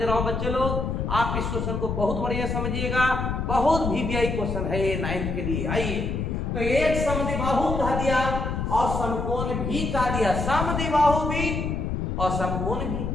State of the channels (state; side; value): noise; left; rumble, 2 dB below the sound